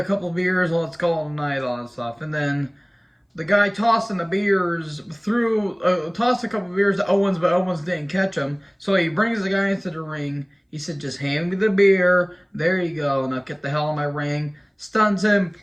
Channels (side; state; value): both; identical; correlation 1.00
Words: couple of beers, let's call it a night," all that stuff. And then the guy tossing the beers tossed a couple of beers to Owens, but Owens didn't catch them. So he brings the guy into the ring. He said, "Just hand me the beer. There you go. Now get the hell out of my ring." Stuns him,